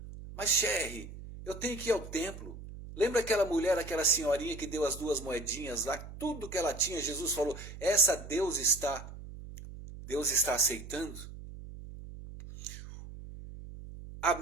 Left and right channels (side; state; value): right; noise; hum, 13 dB below the sound